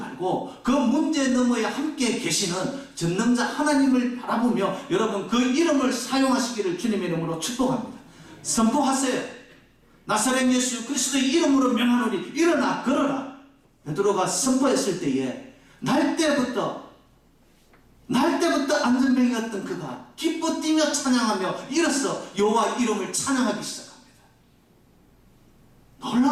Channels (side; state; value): both; identical; correlation 1.00